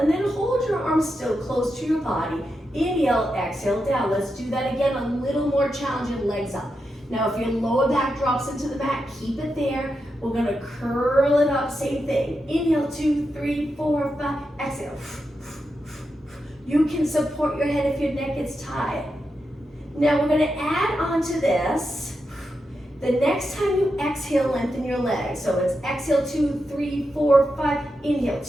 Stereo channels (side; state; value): both; normal; correlation 0.87